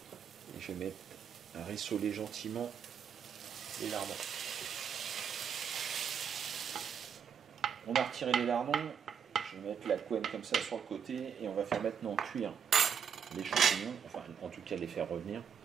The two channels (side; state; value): left; quieter; 7.4 dB